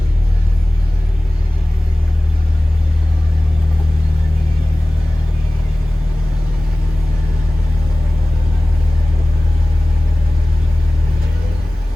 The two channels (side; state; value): both; normal; correlation 0.98